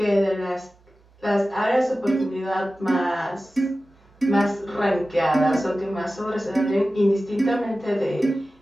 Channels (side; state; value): both; normal; correlation 0.95